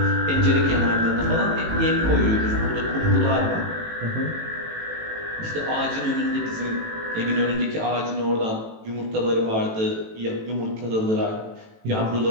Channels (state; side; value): late; left; 18 ms